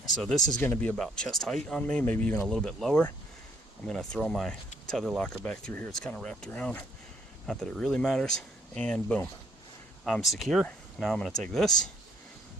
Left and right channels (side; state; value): both; normal; correlation 0.65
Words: So this is going to be about chest height on me, maybe even a little bit lower. I'm going to throw my tether locker back through here. It's kind of wrapped around. Not that it really matters. And boom, I'm secure. Now I'm going to take this,